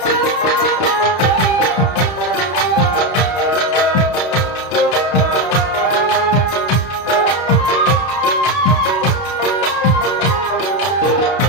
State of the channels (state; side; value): late; right; 32 ms